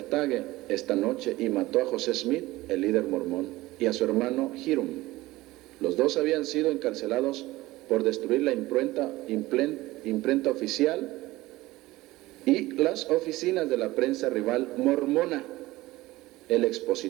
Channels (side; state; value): left; quieter; 18.4 dB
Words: esta noche y mató a José Smith, el líder mormón, y a su hermano Hiram. Los dos habían sido encarcelados por destruir la imprenta oficial y las oficinas de la prensa rival mormona. El